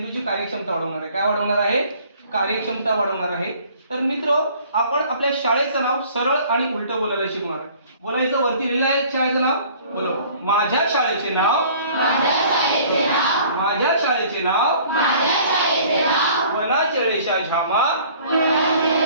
कार्यक्षमता वाढवणार आहे। काय वाढवणार आहे? कार्यक्षमता वाढवणार आहे। तर मित्र, आपण आपल्या शाळेचं नाव सरळ आणि उलट बोलायला शिकणार आहे। बोलायचं, वरती लिहिलं आहे शाळेचं नाव, बोलो, माझ्या शाळेचे नाव वनाचळेशा झामा,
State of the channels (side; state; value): both; inverted; correlation -0.52